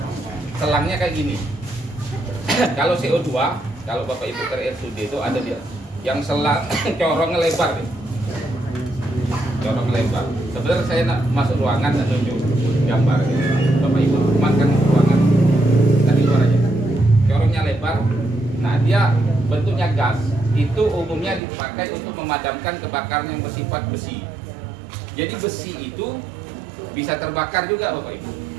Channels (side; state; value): left; drops out; at 21.4 s